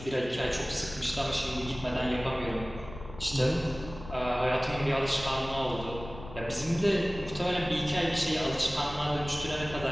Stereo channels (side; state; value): left; noise; rumble, 14 dB below the sound